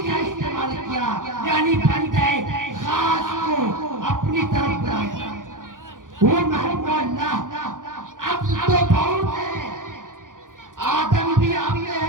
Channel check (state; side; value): late; left; 0.89 ms